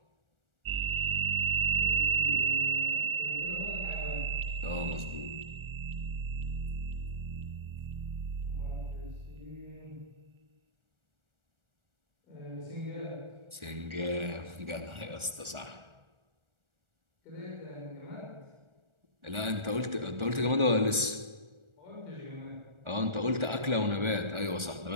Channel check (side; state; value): left; late; 1.4 ms